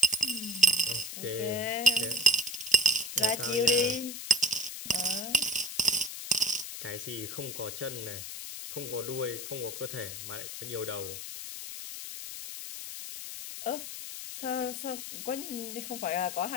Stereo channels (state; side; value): noise; left; hiss, 8 dB below the sound